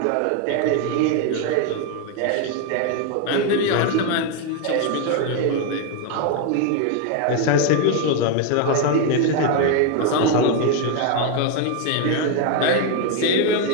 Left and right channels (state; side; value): different; both; correlation 0.01